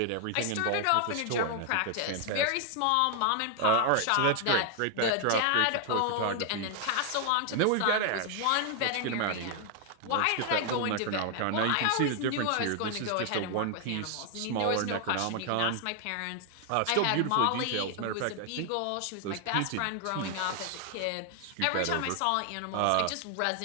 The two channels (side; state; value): both; different; correlation 0.00